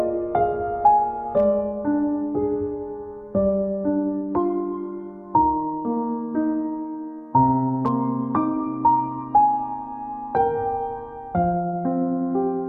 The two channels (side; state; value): both; identical; correlation 1.00